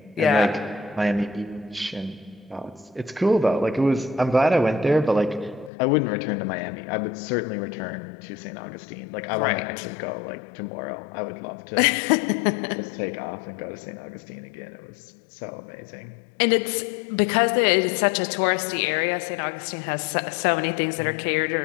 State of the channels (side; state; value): right; drops out; at 5.7 s